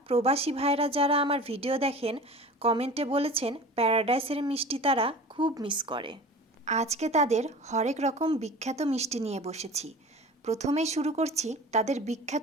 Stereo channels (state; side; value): normal; both; correlation 0.38